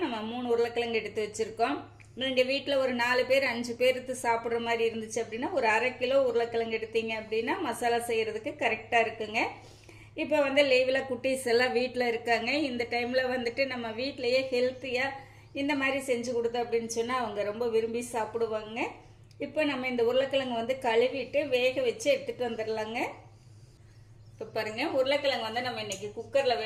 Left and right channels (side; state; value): both; identical; correlation 1.00